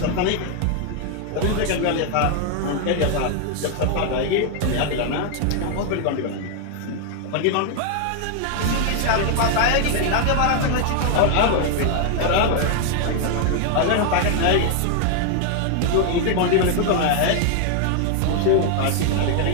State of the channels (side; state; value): both; different; correlation 0.00